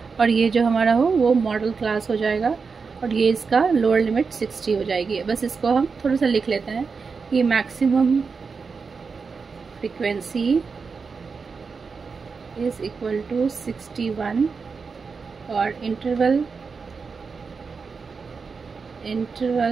और ये जो हमारा हो वो मॉडल क्लास हो जाएगा, और ये इसका लोअर लिमिट 60 हो जाएगी। बस इसको हम थोड़ा सा लिख लेते हैं, ये maximum frequency is equal to 61, और इंटरवल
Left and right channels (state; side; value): quieter; left; 5.1 dB